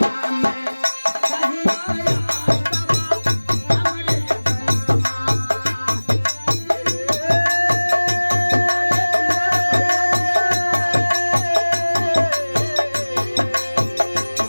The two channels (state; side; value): inverted; both; correlation -1.00